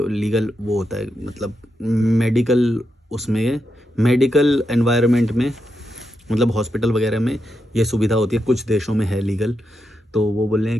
लीगल वो होता है, मतलब मेडिकल, उसमें मेडिकल एनवायरनमेंट में, मतलब हॉस्पिटल वगैरह में ये सुविधा होती है। कुछ देशों में है लीगल। तो वो बोल रहे हैं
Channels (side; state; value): both; normal; correlation 0.85